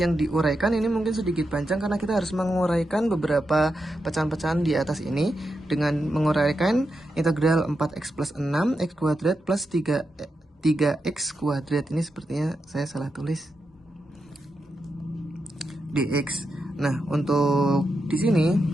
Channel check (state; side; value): normal; both; correlation 0.87